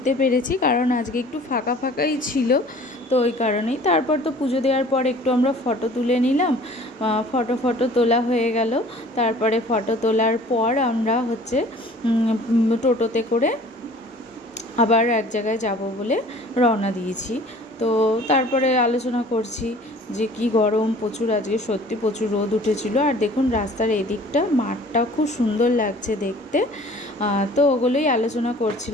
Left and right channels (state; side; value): normal; both; correlation 0.49